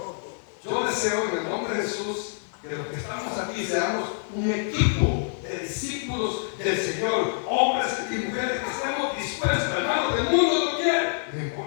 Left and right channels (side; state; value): right; silent; digital silence